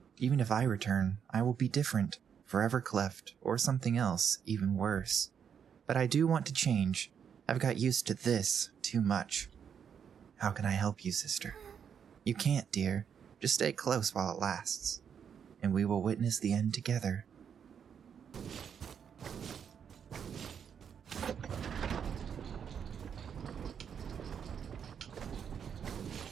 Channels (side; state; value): left; quieter; 7.7 dB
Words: Even if I return, I will be different. Forever cleft, or something else, even worse. But I do want to change. I've got used to this too much. How can I help you, sister? You can't, dear. Just stay close while it lasts. And we will witness the end together.